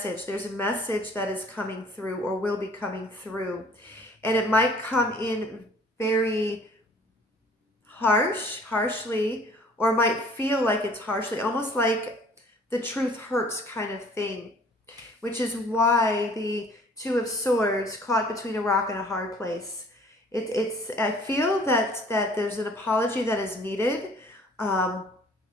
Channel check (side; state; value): both; normal; correlation 0.54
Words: There's a message that is coming through, or will be coming through. And it might come in very harshly, or might feel like it's harshly, almost like the truth hurts kind of thing, which is why the Two of Swords, caught between a rock and a hard place. I feel that there's an apology that is needed, and